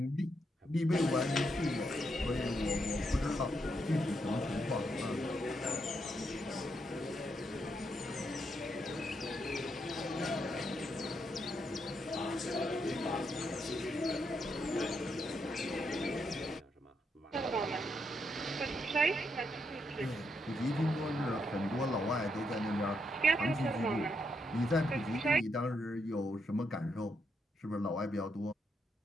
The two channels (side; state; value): both; normal; correlation 0.79